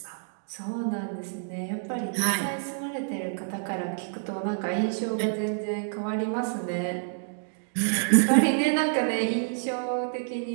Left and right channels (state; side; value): silent; left; digital silence